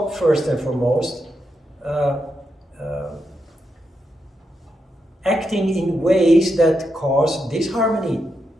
first and foremost, acting in ways that cause disharmony.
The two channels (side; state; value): both; normal; correlation 0.84